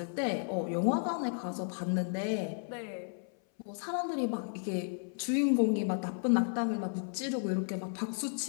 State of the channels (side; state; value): right; silent; 55 dB below the other